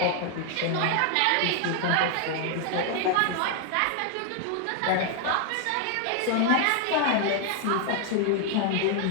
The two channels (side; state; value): both; different; correlation 0.00